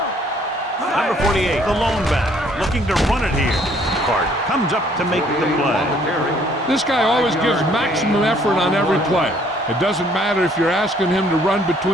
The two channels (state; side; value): normal; both; correlation 0.62